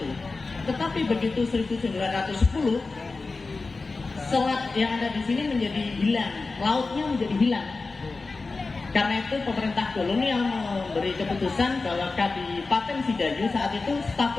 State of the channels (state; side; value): quieter; right; 3.8 dB